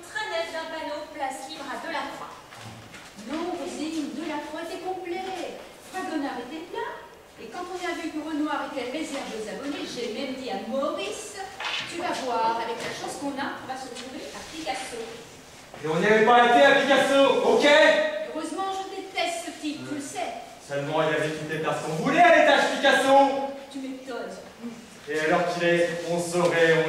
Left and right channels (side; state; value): both; identical; correlation 1.00